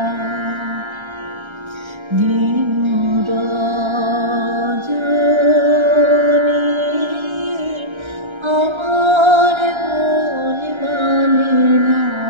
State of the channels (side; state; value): left; late; 1.3 ms